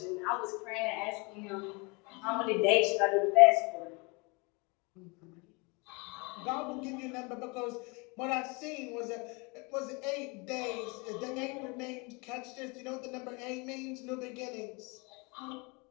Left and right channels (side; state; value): right; quieter; 29.2 dB